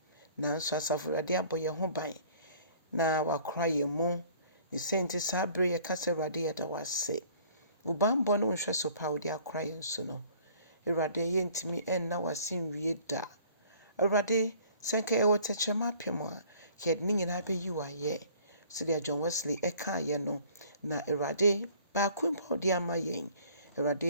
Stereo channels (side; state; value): both; inverted; correlation -0.53